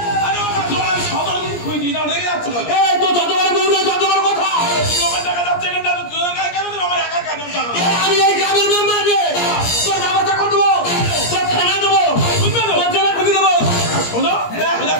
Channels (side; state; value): right; late; 17 ms